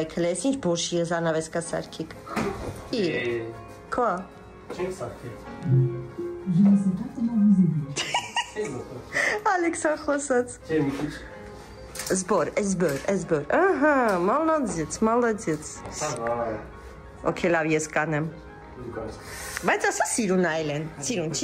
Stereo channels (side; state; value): both; identical; correlation 1.00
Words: հլե, ես ինչ բոշի զանավեսկա սարքիկ։ Իր, կա։ Չենք սարքել։ Ալեքսա խոսած։ Չէ, մի քիչ։ Զբոր, ահա, մալադեց։ Okay, լավ, ես կանեմ։ Բայց ասա սիրուն այլ են, սիրուն